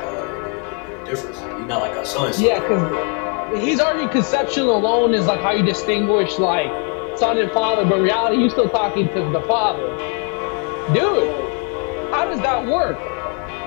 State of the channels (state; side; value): quieter; right; 38.9 dB